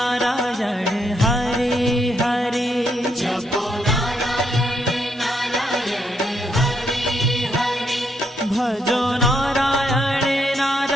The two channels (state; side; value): normal; both; correlation 0.76